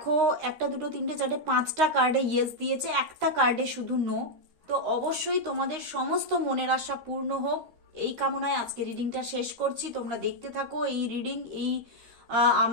1 2 3 4 5টা কার্ডে ইয়েস দিয়েছে, একটা কার্ডে শুধু নো। তো অবশ্যই তোমাদের সমস্ত মনের আশা পূর্ণ হোক, এই কামনায় আজকে রিডিংটা শেষ করছি। তোমরা দেখতে থাকো এই রিডিং, এই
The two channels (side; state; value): left; late; 13 ms